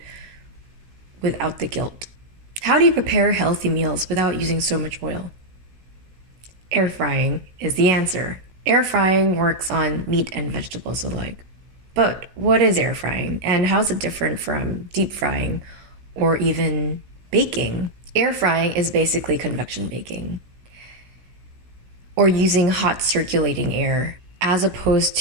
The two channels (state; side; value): late; left; 17 ms